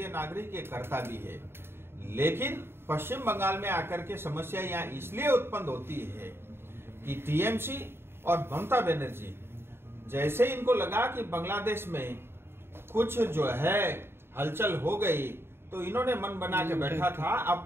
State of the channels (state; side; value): late; left; 0.11 ms